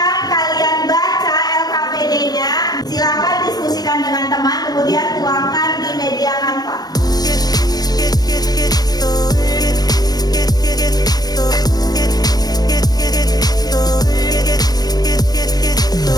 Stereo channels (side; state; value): right; late; 0.19 ms